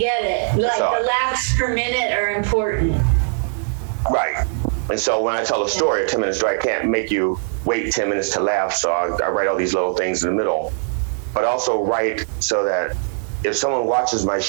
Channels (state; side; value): silent; left; digital silence